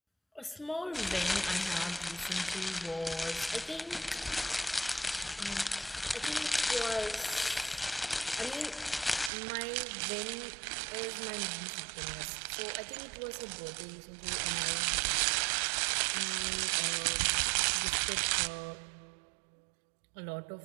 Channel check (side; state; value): left; drops out; at 9.3 s